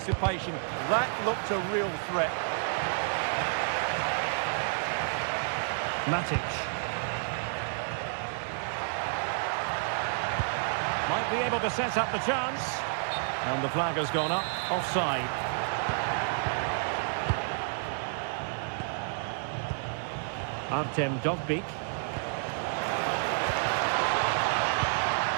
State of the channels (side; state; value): left; silent; 58 dB below the other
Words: That looked a real threat. Matic. Might be able to set up the chance. And the flag has gone up. Offside. Artem Dovbik.